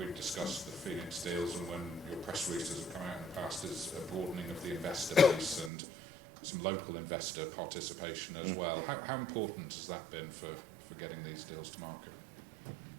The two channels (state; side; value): drops out; left; at 5.7 s